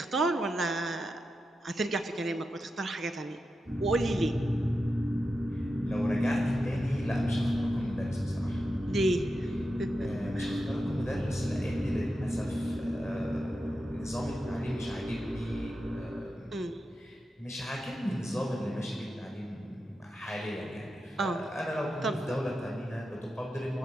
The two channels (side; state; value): both; normal; correlation 0.89